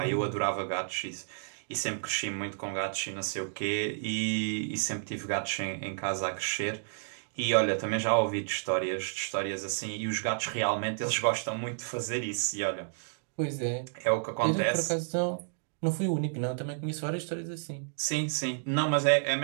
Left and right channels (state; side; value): silent; left; digital silence